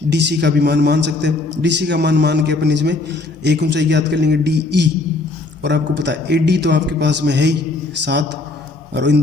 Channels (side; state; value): right; quieter; 3.3 dB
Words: डी सी का भी मान मान सकते हैं। डी सी का मान के अपन इसमें एक ऊंचाई ज्ञात कर लेंगे डी ई। और आपको पता है ए डी तो आपके पास में है ही 7, और इन